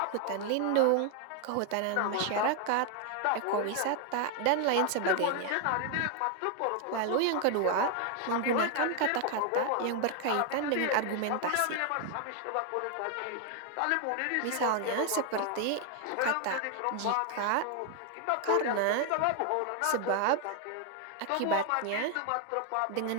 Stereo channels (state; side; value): different; both; correlation 0.00